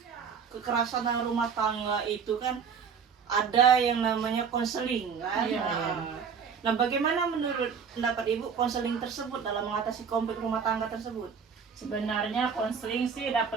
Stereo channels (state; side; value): quieter; left; 6.5 dB